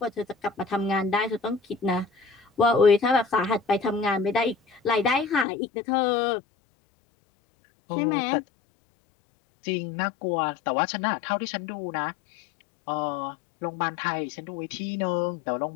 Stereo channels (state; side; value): drops out; right; at 5.5 s